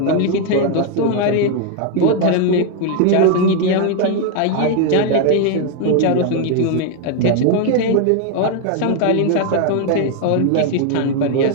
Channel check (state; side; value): different; both; correlation 0.00